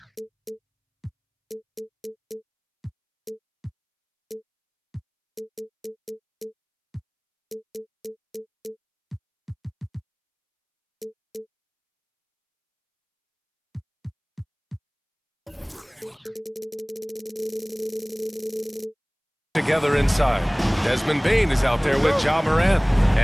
Together inside. Desmond Bane is out there with Ja Morant.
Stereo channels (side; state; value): both; identical; correlation 1.00